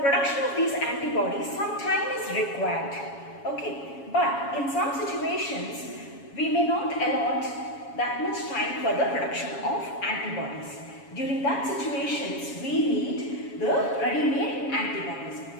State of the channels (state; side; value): late; right; 7.2 ms